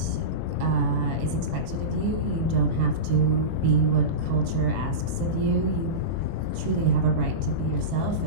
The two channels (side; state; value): left; late; 24 ms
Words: is expected of you. You don't have to be what culture asks of you. You truly have a right to be yourself